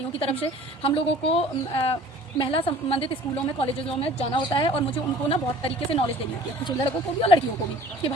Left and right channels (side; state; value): both; normal; correlation 0.49